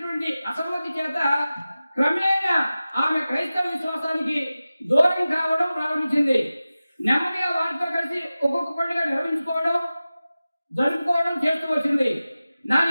అసమ్మతి చేత క్రమేణా ఆమె క్రైస్తవ విశ్వాసానికి దూరం కావడం ప్రారంభించింది. నెమ్మదిగా వారితో కలిసి ఒక్కొక్క పండుగ నిర్వహించుకోవడం జరుపుకోవడం చేస్తూ వచ్చింది. నా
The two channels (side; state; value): both; inverted; correlation -0.96